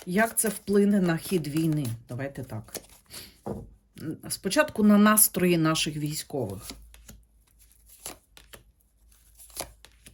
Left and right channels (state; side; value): identical; both; correlation 1.00